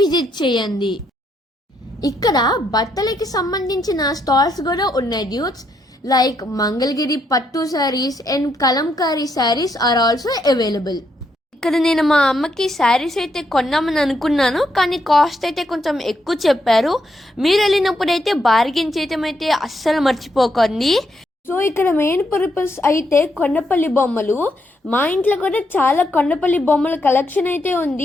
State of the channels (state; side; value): normal; both; correlation 0.77